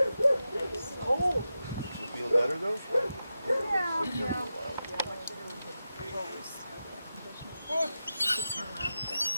Cold. You feel better though? Yeah.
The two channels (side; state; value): both; inverted; correlation -0.91